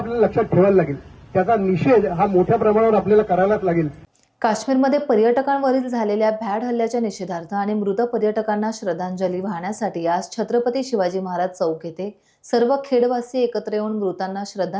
लक्षात ठेवायला लागेल. त्याचा निषेध हा मोठ्या प्रमाणावर आपल्याला करायलाच लागेल. काश्मीरमध्ये पर्यटकांवरील झालेल्या भ्याड हल्ल्याच्या निषेधार्थ आणि मृत पर्यटकांना श्रद्धांजली वाहण्यासाठी आज छत्रपती शिवाजी महाराज चौक येथे सर्व खेडवासी एकत्र येऊन मृतांना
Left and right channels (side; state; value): both; identical; correlation 1.00